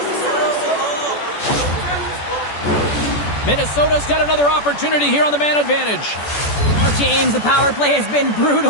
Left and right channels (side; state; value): right; late; 14 ms